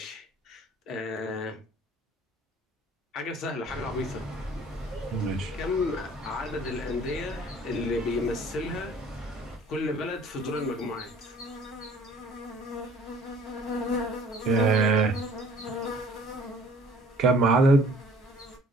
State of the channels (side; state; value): both; normal; correlation 0.53